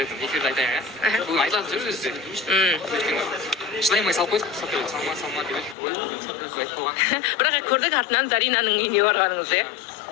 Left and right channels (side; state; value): right; drops out; at 5.8 s